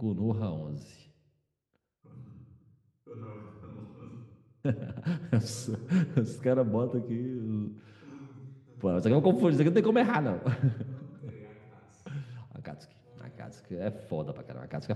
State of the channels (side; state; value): both; identical; correlation 1.00